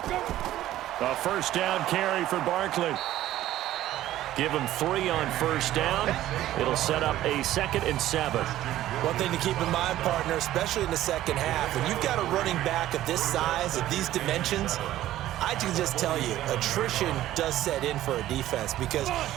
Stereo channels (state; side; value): quieter; left; 13.9 dB